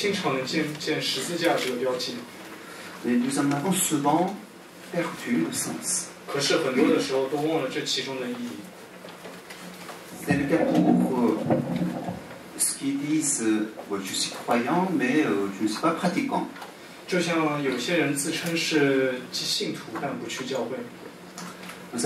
常能见十字架这个标记。 Mais nous en avons souvent perdu le sens. 可是很多的时候都忘了这其中的意义。 C'est le cas pour ceux qui disent je suis croyant, mais je ne suis pas pratiquant. 就像有些人自称是信徒，但不去教会。 Vous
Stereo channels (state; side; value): identical; both; correlation 1.00